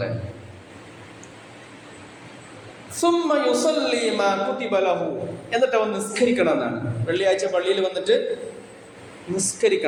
എന്നിട്ട് അവൻ നിസ്കരിക്കണം എന്നാണ്. വെള്ളിയാഴ്ച പള്ളിയിൽ വന്നിട്ട്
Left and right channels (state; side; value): identical; both; correlation 1.00